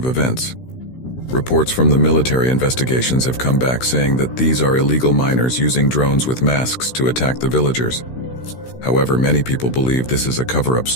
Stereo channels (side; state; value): right; late; 16 ms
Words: events. Reports from the military investigations have come back saying that these are illegal miners using drones with masks to attack the villagers. However, many people believe this is a cover-up